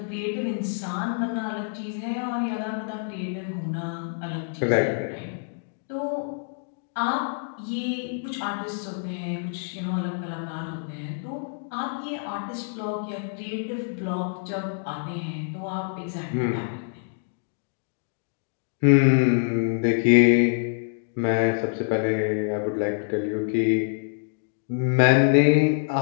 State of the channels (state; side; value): silent; right; digital silence